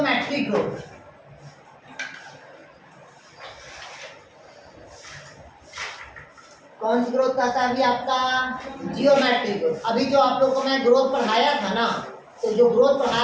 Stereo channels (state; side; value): identical; both; correlation 1.00